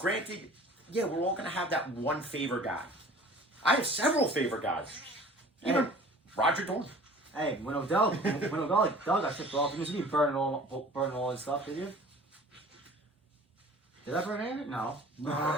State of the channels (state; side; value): normal; both; correlation 0.46